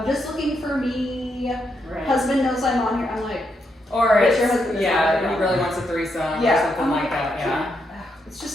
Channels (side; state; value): both; normal; correlation 0.80